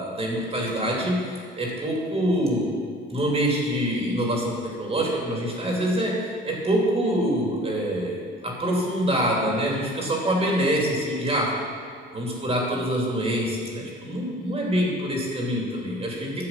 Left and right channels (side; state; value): both; normal; correlation 0.48